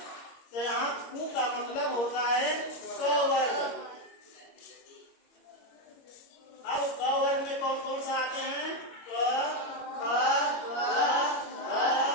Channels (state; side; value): late; right; 21 ms